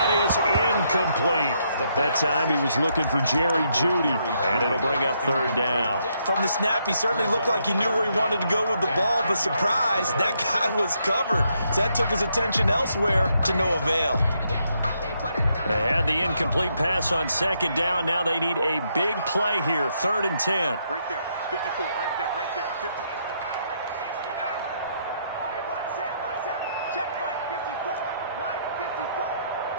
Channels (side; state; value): both; inverted; correlation -0.76